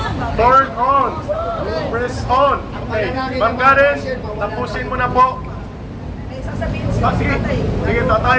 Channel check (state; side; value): identical; both; correlation 1.00